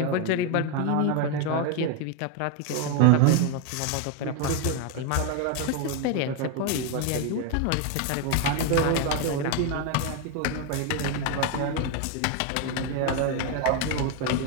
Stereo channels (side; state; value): both; different; correlation 0.01